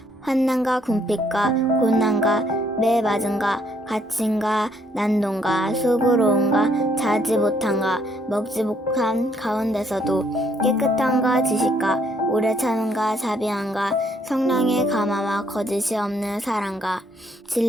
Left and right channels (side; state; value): both; normal; correlation 0.68